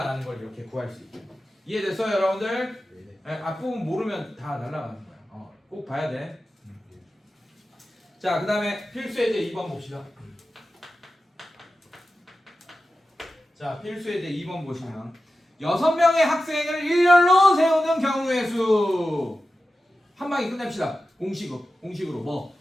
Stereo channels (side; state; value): both; normal; correlation 0.93